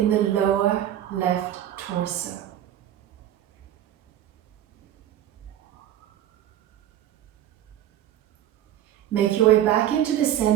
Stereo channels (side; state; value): left; quieter; 11.7 dB